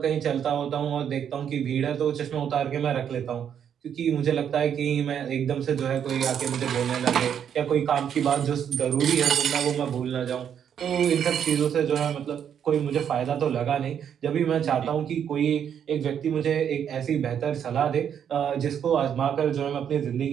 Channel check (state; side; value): quieter; left; 8.6 dB